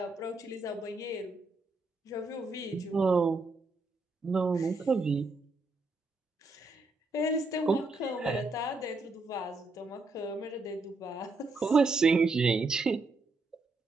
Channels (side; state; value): left; quieter; 3.3 dB